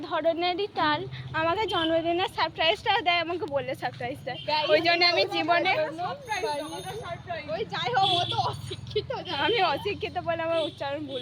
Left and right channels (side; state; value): both; identical; correlation 1.00